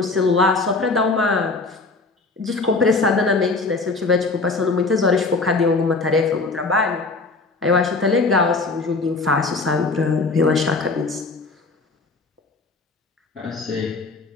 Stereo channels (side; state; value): right; quieter; 3.7 dB